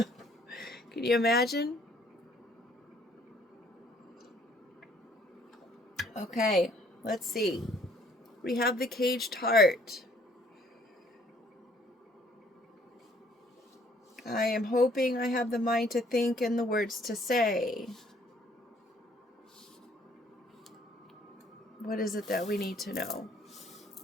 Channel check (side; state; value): both; normal; correlation 0.61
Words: you imagine? Okay, let's see. We have the Caged Heart. I am hoping I have the mind to think and the words to say. What is it that we need to know?